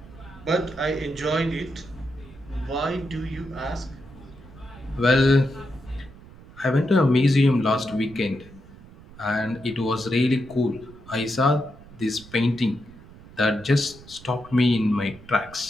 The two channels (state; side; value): noise; right; rumble, 20 dB below the sound